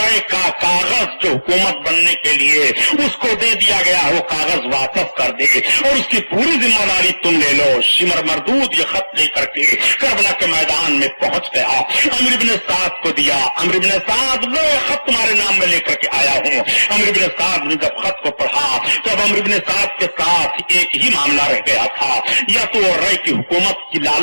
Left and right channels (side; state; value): both; inverted; correlation -1.00